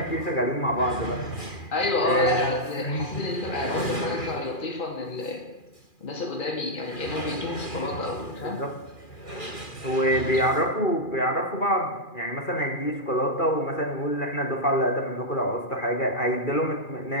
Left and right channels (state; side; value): late; right; 2.4 ms